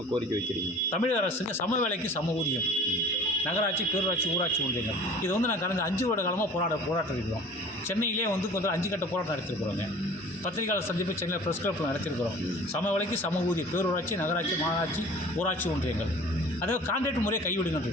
கோரிக்கை வைக்கிறீங்க? தமிழக அரசுக்கு சம வேலைக்கு சம ஊதியம், நகராட்சி, பேரூராட்சி, ஊராட்சி ஒன்றியங்கள். இது வந்து நான் கடந்த 5 வருட காலமாக போராட்டம் இருக்கிறோம். சென்னையிலே வந்து கொஞ்சம் 5 கட்ட போராட்டம் நடத்திருக்கிறோங்க. பத்திரிகையாளர் சந்திப்பு சென்னையில் ப்ரெஸ் கிளப்பில் நடத்திருக்கிறோம். சம வேலைக்கு சம ஊதியம், பேரூராட்சி, நகராட்சி, மாநகராட்சி, ஊராட்சி ஒன்றியங்கள். அதாவது கான்ட்ராக்ட் முறையை கைவிடுங்கன்னு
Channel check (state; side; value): normal; both; correlation 0.45